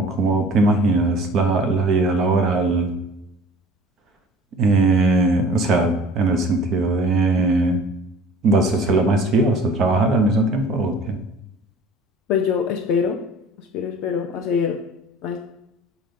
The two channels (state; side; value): normal; both; correlation 0.47